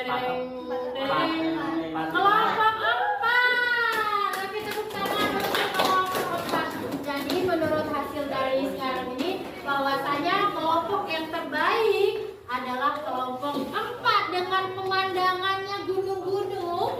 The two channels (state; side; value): identical; both; correlation 1.00